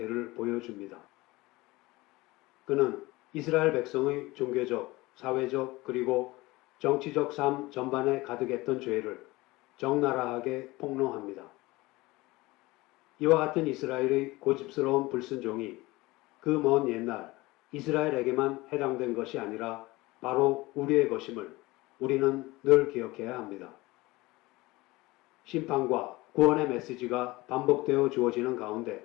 보여줍니다. 그는 이스라엘 백성의 종교적, 사회적 그리고 정치적 삶 전반에 가득했던 죄를 적나라하게 폭로합니다. 이와 같은 이스라엘의 고집스러운 불순종이 그 먼 옛날 이스라엘에게만 해당된 것이 아니라 바로 우리의 것임을 우리는 늘 기억해야 합니다. 심판과 구원의 메시지가 반복되어 주어지는 가운데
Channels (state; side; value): quieter; right; 20.8 dB